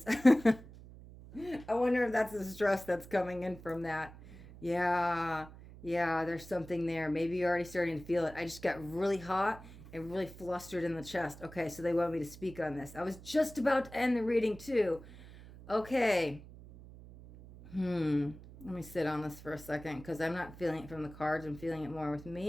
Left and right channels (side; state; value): right; noise; hum, 17 dB below the sound